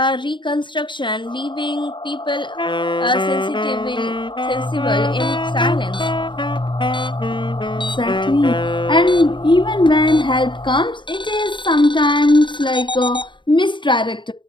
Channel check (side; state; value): right; late; 0.23 ms